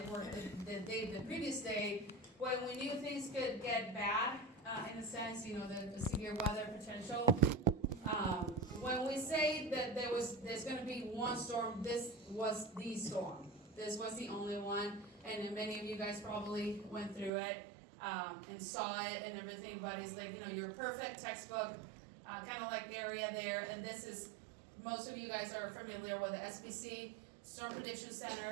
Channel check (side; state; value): left; drops out; at 17.3 s